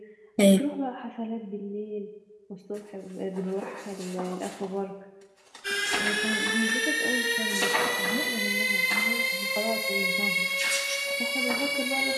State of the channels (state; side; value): identical; both; correlation 1.00